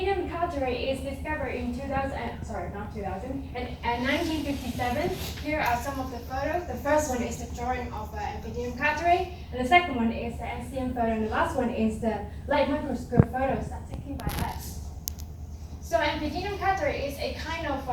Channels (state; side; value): identical; both; correlation 1.00